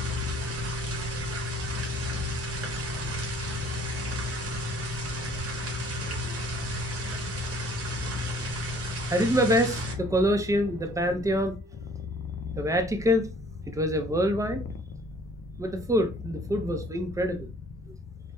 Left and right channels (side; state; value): both; normal; correlation 0.55